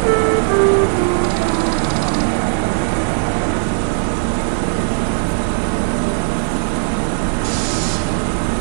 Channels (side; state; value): left; silent; 68 dB below the other